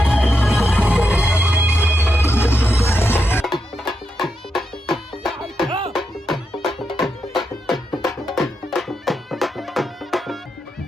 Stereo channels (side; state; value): both; normal; correlation 0.84